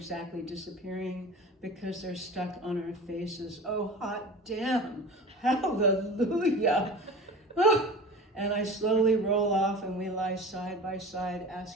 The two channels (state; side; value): normal; both; correlation 0.36